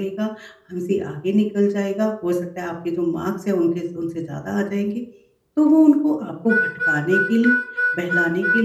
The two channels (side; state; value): both; identical; correlation 1.00